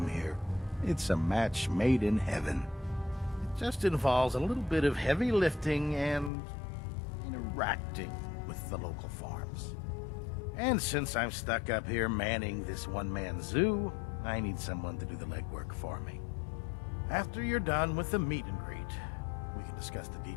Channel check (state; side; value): drops out; right; at 6.3 s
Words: here. It's a match made in heaven. It just involves a little bit of heavy lifting and interacting with the local farms. And since I'm stuck up here manning this one-man zoo, I need someone to do the legwork for me. After you're done with the meet and greet, we can discuss the